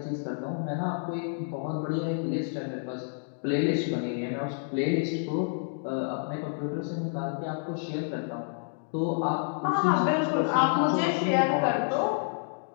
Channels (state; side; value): silent; right; digital silence